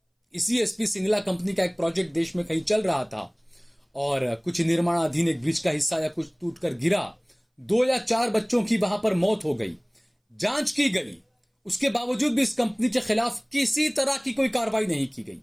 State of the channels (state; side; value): identical; both; correlation 1.00